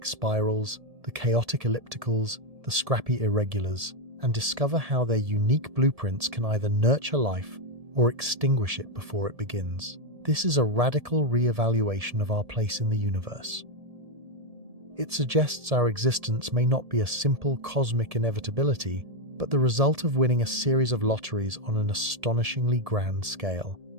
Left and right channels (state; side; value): late; left; 1.7 ms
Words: spirals, the chaotic ellipticals, the scrappy irregulars, and discover how their unique blueprints can either nurture life or extinguish it before it begins. This is a radical re-evaluation of our place in the universe. It suggests our existence may not be a simple cosmic inevitability, but the result of winning a series of lotteries on an astonishingly grand scale.